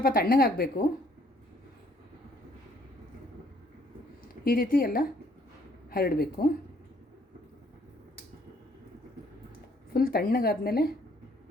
ತಣ್ಣಗಾಗಬೇಕು. ಈ ರೀತಿ ಎಲ್ಲ ಹರಡಬೇಕು. ಫುಲ್ ತಣ್ಣಗಾದ್ಮೇಲೆ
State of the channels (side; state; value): both; normal; correlation 0.64